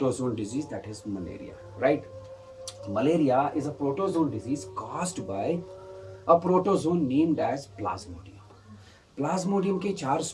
disease, that is malaria, right? Malaria is a protozoan disease caused by a protozoan named as Plasmodium. Plasmodium के चार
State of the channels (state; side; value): identical; both; correlation 1.00